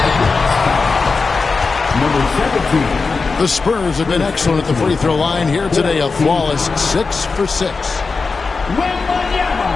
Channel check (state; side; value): quieter; right; 4.4 dB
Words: Number 17. The Spurs have been excellent at the free throw line here today. A flawless 6 for 6. Wembanyama.